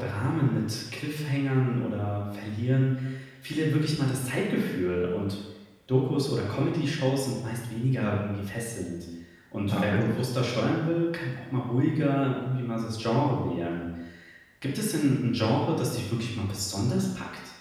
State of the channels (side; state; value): both; identical; correlation 1.00